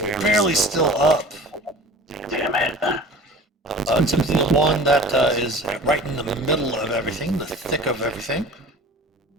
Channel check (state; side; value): normal; both; correlation 0.41